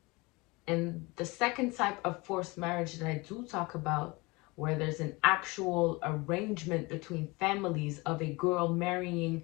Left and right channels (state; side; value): quieter; right; 24.8 dB